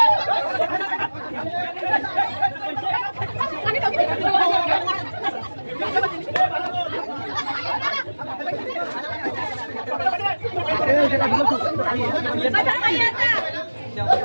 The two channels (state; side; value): inverted; both; correlation -1.00